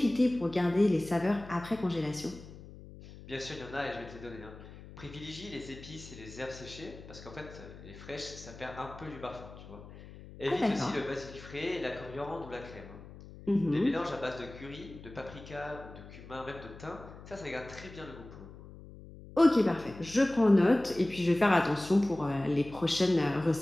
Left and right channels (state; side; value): noise; left; hum, 16 dB below the sound